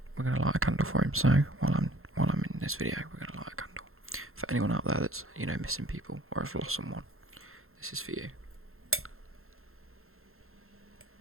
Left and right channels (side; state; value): left; late; 0.62 ms